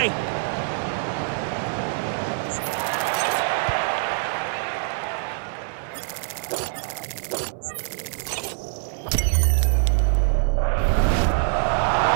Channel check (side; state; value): left; silent; 62 dB below the other